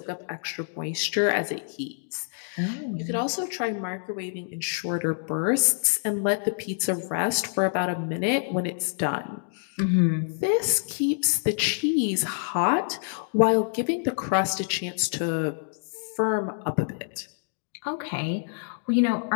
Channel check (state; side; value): silent; right; digital silence